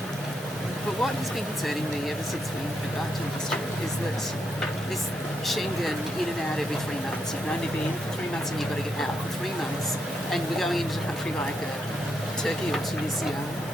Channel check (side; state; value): both; normal; correlation 0.80